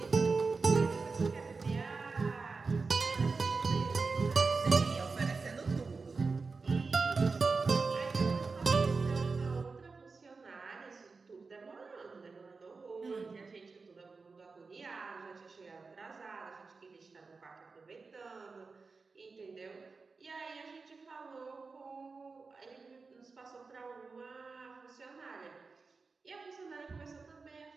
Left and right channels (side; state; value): left; quieter; 4.3 dB